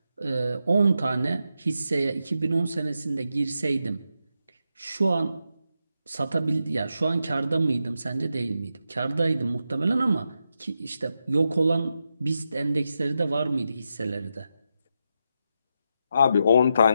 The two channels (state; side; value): inverted; both; correlation -0.86